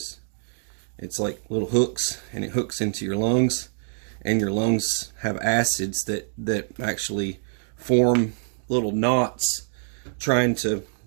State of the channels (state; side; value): silent; left; digital silence